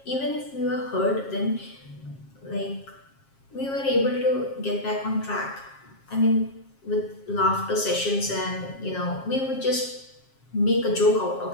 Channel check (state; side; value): late; right; 7.4 ms